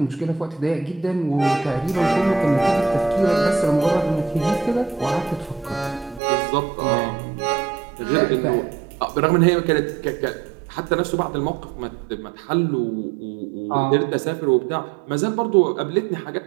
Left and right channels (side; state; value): left; drops out; at 6.2 s